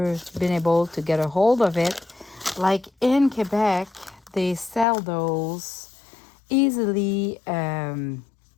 been able to get a hold of it. Like in Quebec, they sell those easily $5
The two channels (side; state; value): right; drops out; at 4.9 s